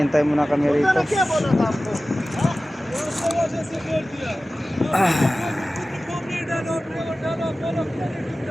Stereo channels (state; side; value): normal; both; correlation 0.96